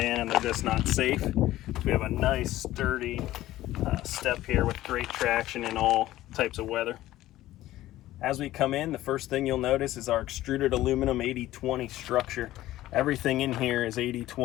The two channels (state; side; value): quieter; right; 15.2 dB